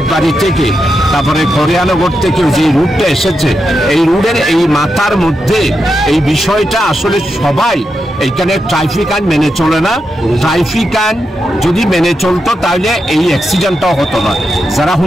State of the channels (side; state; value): both; normal; correlation 0.86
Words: থেকে, তারপরে খরিয়ানগর থেকে যে রুটটা এসেছে, এই রুটের এই মাথার মধ্যে এই বিষয়টা আসলে সবাই এইখানে ট্রাফিক আইন মেনে চলে না। ট্রাফিক আইন যদি মেনে চলতো তাহলে এই অ্যাক্সিডেন্টটাও হতো না। যারা